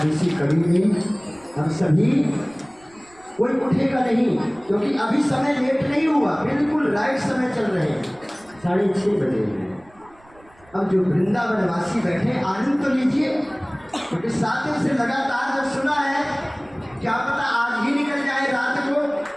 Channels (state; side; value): noise; right; rumble, 28 dB below the sound